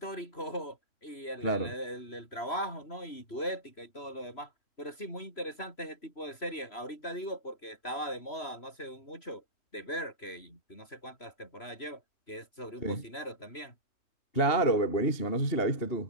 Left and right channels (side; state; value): right; late; 3.0 ms